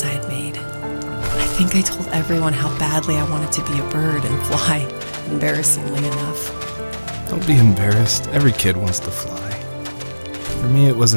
I had made. I think I told everyone how badly I wanted to be a bird and fly, embarrassingly enough. Don't be embarrassed. Every kid wants to fly. For me, it was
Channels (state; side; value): inverted; both; correlation -1.00